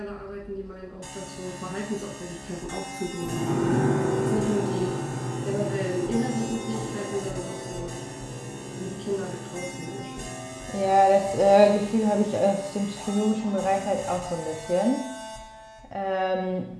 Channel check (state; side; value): identical; both; correlation 1.00